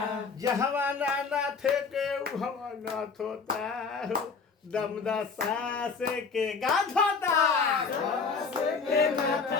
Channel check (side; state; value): right; quieter; 5.1 dB